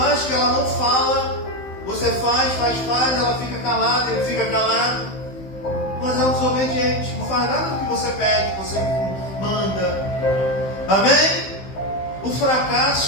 que ela não fala, você faz, ela fica calada, ele fica calado. Mas é um desobediente. Não faz nada do que você pede, que você manda. Amém? O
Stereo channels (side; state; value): right; late; 15 ms